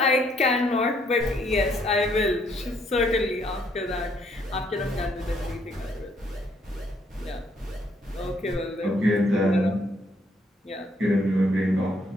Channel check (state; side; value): normal; both; correlation 0.69